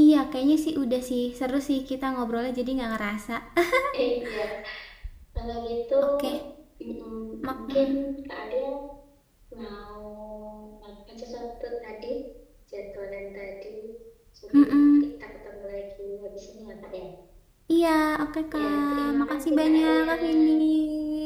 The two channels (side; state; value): both; identical; correlation 1.00